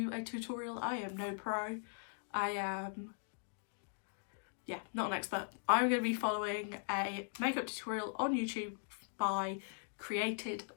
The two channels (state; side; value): silent; right; digital silence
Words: a tutorial, I am no pro, I am not an expert. I'm going to be following a makeup tutorial on YouTube by Created